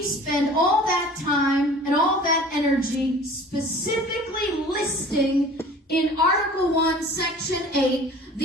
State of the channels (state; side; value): normal; both; correlation 0.45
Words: spend all that time and all that energy specifically listing in Article 1, Section 8,